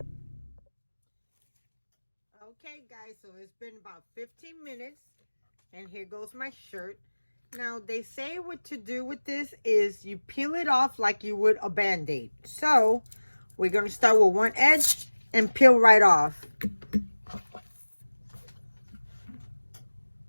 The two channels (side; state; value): both; inverted; correlation -1.00